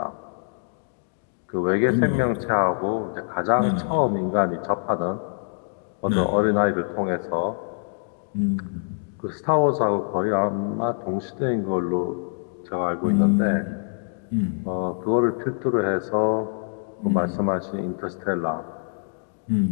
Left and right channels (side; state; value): right; silent; digital silence